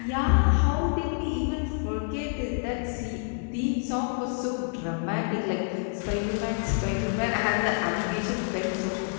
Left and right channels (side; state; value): right; silent; 60 dB below the other